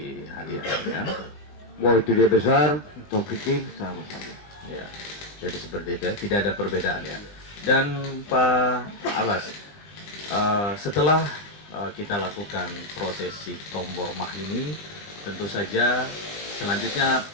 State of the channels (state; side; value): late; right; 20 ms